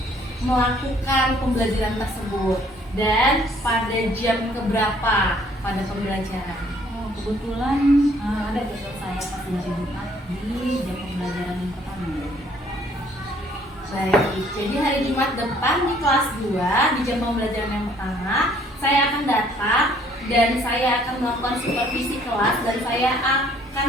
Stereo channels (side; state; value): both; normal; correlation 0.61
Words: melakukan pembelajaran tersebut dan pada jam keberapa pada pembelajaran? Kebetulan ada jadwal saya pas hari Jumat di jam pembelajaran yang pertama. Baik, jadi hari Jumat depan di kelas 2 di jam pembelajaran yang pertama saya akan datang dan saya akan melakukan supervisi kelas, dan saya akan